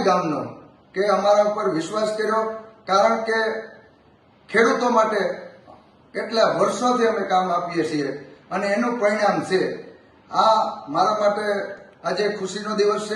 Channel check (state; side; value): identical; both; correlation 1.00